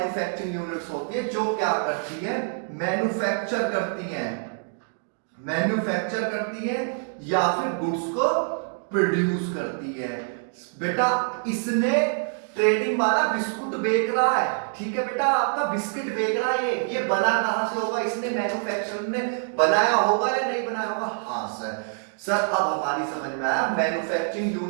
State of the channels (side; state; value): left; silent; 61 dB below the other